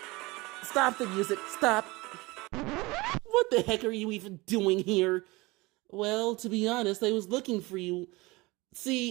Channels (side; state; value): left; quieter; 22.8 dB